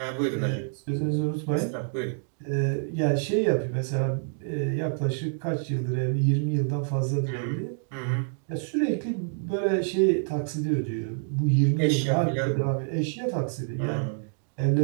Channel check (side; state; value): left; silent; digital silence